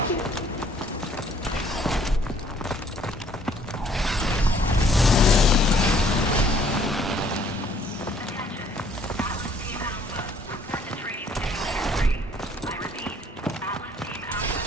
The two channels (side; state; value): both; normal; correlation 0.61